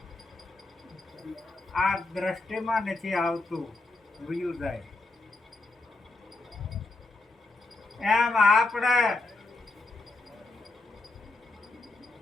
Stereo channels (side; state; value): right; quieter; 3.1 dB